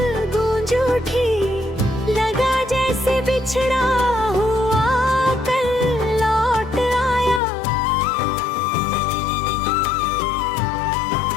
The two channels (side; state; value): right; drops out; at 7.4 s